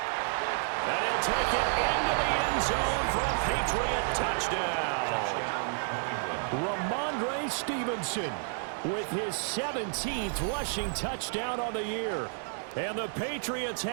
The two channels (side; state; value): left; silent; 57 dB below the other